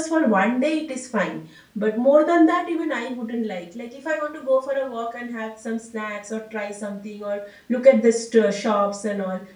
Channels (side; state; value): both; identical; correlation 1.00